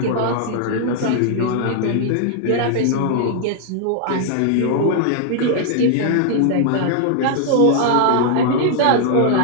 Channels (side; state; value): both; different; correlation 0.00